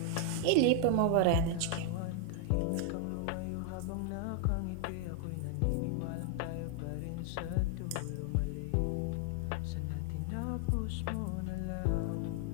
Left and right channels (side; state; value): both; different; correlation 0.00